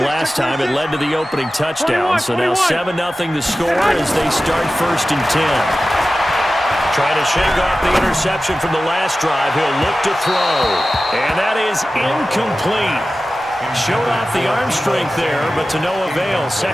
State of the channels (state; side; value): normal; both; correlation 0.95